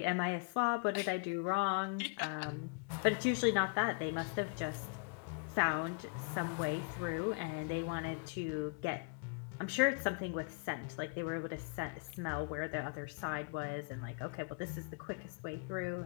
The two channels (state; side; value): quieter; right; 33.7 dB